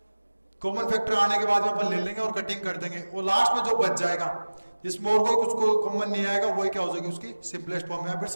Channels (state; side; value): inverted; both; correlation -1.00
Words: कॉमन फैक्टर आने के बाद में अपन ले लेंगे और कटिंग कर देंगे, और लास्ट में जो बच जाएगा जिसमें और कोई कुछ कॉमन नहीं आएगा वही क्या हो जाएगी, उसकी सिंपलेस्ट फॉर्म या फिर